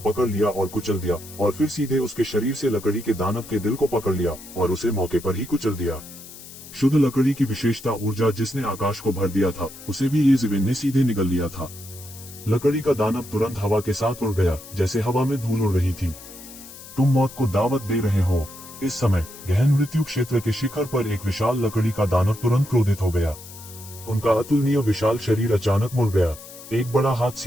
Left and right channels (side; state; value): left; noise; hiss, 16 dB below the sound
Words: लिया और कुचल दिया, और फिर सीधे उसके शरीर से लकड़ी के दानव के दिल को पकड़ लिया और उसे मौके पर ही कुचल दिया। शुद्ध लकड़ी की विशेषता ऊर्जा जिसने आकाश को भर दिया था, उसे भी येशिवेन ने सीधे निगल लिया था। लकड़ी का दानव तुरंत हवा के साथ उड़ गया, जैसे हवा में धूल उड़ रही थी। तुम मौत को दावत दे रहे हो। इस समय गहन मृत्यु क्षेत्र के शिखर पर एक विशाल लकड़ी का दानव तुरंत क्रोधित हो गया। उनका अतुलनीय विशाल शरीर अचानक मुड़ गया। एक बड़ा हाथ